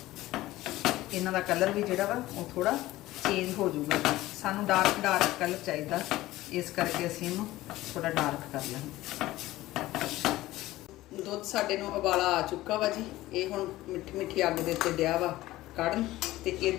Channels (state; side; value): quieter; right; 16.8 dB